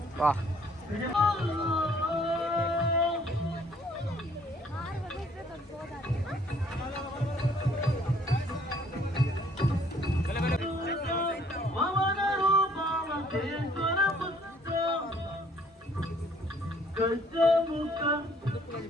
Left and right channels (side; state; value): both; normal; correlation 0.61